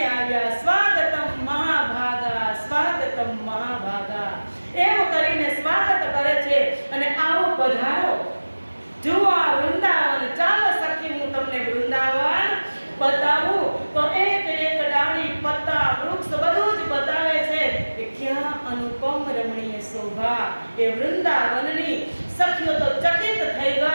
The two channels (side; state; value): both; inverted; correlation -1.00